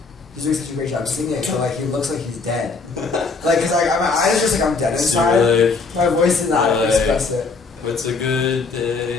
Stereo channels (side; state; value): right; quieter; 4.3 dB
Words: he's doing such a great job singing, but like he looks like he's dead." Like, cause like my eyes just like I'm dead inside. Like, My voice did not like, express it. what's a good